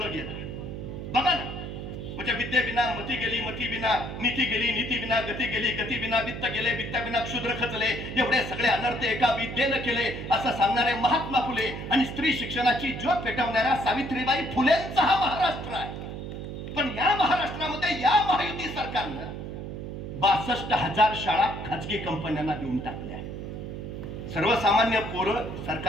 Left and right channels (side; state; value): right; noise; hum, 7 dB below the sound